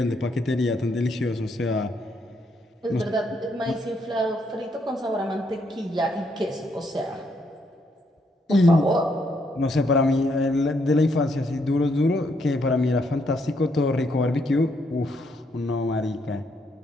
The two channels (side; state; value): both; normal; correlation 0.74